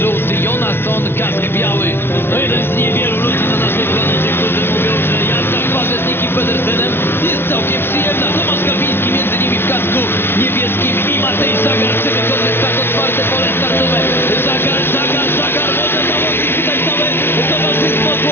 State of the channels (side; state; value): right; late; 0.11 ms